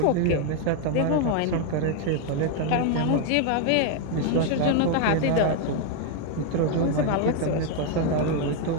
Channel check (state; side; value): different; both; correlation 0.01